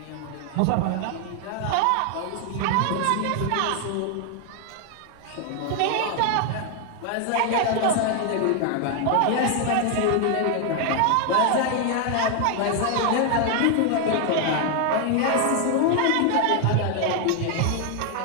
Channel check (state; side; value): different; both; correlation 0.00